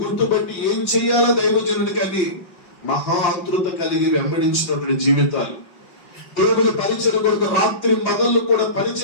గుర్తుపట్టి ఏం చెయ్యాలో దైవజనుడు కానీ మహా ఆతృత కలిగి వెంబడించినటువంటి జీవితాలు, దేవుని పరిచయం కొరకు రాత్రి పగళ్ళు కూడా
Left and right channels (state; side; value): late; right; 5.4 ms